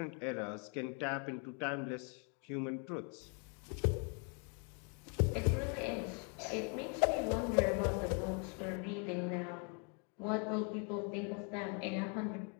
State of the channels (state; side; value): quieter; right; 38.4 dB